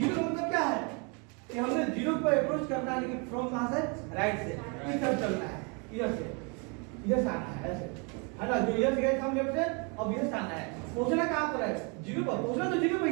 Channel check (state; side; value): quieter; left; 33.5 dB